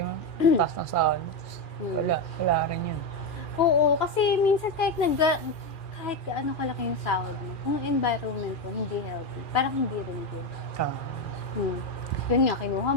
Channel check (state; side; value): late; right; 2.4 ms